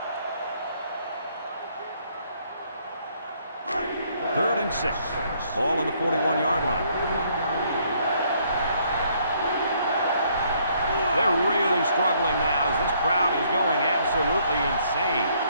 3rd and 6. Ball on the 41-yard line. They're really struggling now as this crowd is going absolutely insane.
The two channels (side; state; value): both; inverted; correlation -0.67